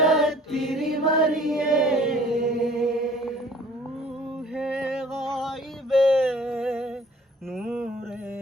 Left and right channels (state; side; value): normal; both; correlation 0.52